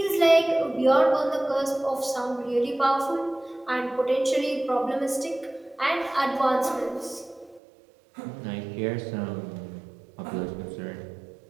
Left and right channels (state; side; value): drops out; left; at 7.6 s